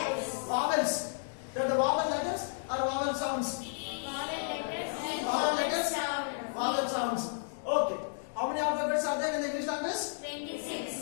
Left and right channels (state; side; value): silent; right; digital silence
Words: Vowels. They're the vowel letters or vowel sounds? Vowel letters, vowel sounds. Okay. How many alphabets are there in the English language?